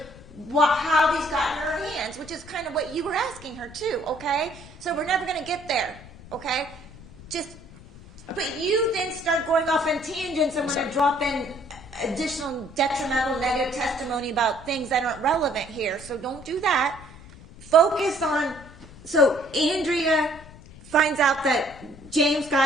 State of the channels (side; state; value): left; noise; rumble, 19 dB below the sound